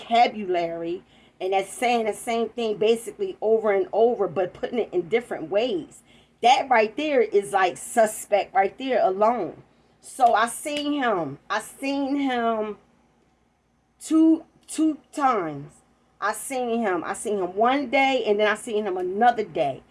and that's saying the same thing basically over and over, but putting it in different ways. That right there is like suspect right there alone. So I seen him two times. I seen him one day, and then I seen him another day.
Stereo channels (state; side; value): identical; both; correlation 1.00